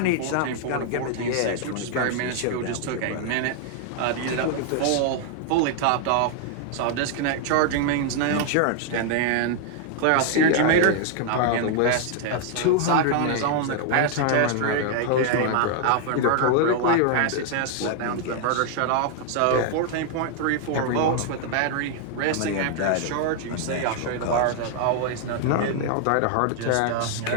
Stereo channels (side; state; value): both; different; correlation 0.00